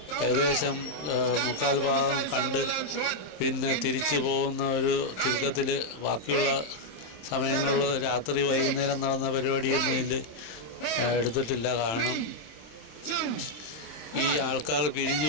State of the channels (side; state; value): right; late; 27 ms